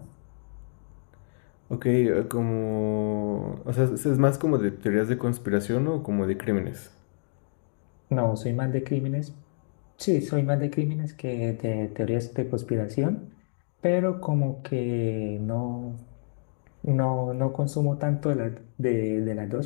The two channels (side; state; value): right; silent; digital silence